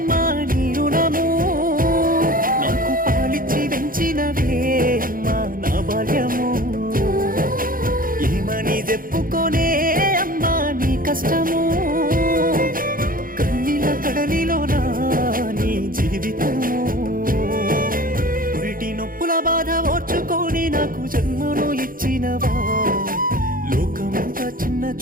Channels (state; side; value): late; left; 0.41 ms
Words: నీ రుణము, నాకు పాలిచ్చి పెంచినవే అమ్మా నా బాల్యము, ఏమని చెప్పుకోనే అమ్మా నీ కష్టము, కన్నీళ్ళ కడలిలోనా నీ జీవితము, పురిటి నొప్పుల బాధ ఓర్చుకొని నాకు జన్మను ఇచ్చినవా, లోకమంతా చిన్న